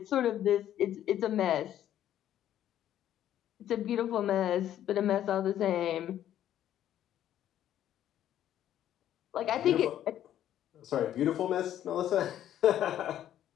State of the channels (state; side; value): quieter; right; 11.4 dB